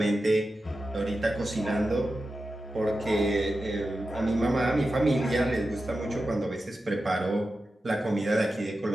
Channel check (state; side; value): normal; both; correlation 0.92